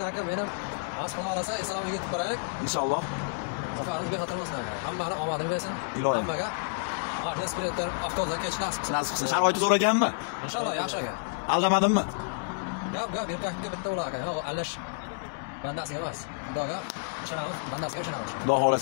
aka, menim mas'ul olasa, esalomga yetib qo'yaylik. Inshaalloh. Safarimizga xatar bo'lsin aka. Hammani omadini bersin. Hammaga Ornas klientlar avtobusda kech nasib qilsin. Sharoiti zo'r ekanmi? Inshaalloh yaxshi aka. Aldamadimmi? Gap, erkakka bitta bo'lar aka. Yo'q, allash bandasiga emas. Xudoga ishonamiz, bandasiga ishonamiz. Xudo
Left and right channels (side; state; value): right; quieter; 38.2 dB